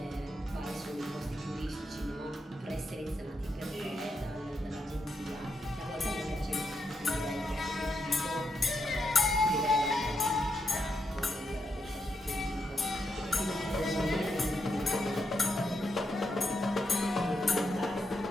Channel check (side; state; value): both; normal; correlation 0.82